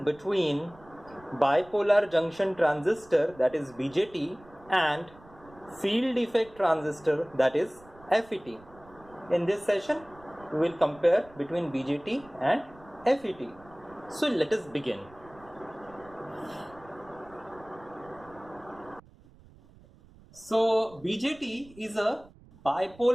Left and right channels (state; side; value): noise; right; rumble, 24 dB below the sound